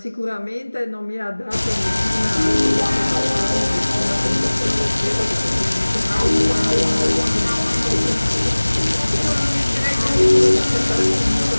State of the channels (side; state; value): both; inverted; correlation -1.00